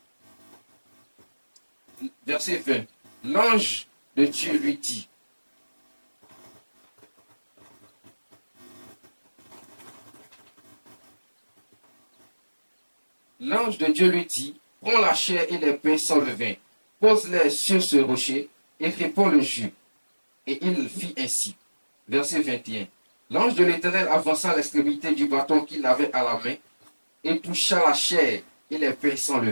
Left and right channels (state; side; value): inverted; both; correlation -1.00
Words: Verset 20. L'ange de Dieu lui dit, l'ange de Dieu lui dit, prends la chair et les pains sans levain, pose-les sur ce rocher et répands le jus. Et il fit ainsi. Verset 21. L'ange de l'Éternel avança l'extrémité du bâton qu'il avait à la main et toucha la chair et les pains sans